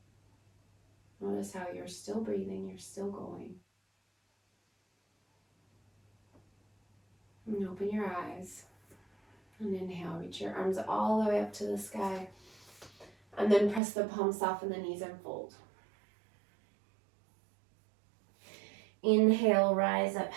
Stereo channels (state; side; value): drops out; left; at 13.8 s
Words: Notice how you're still breathing, you're still going. And open your eyes. And inhale, reach your arms all the way up to the sky. And then press the palms, soften the knees, and fold. Inhale, rise up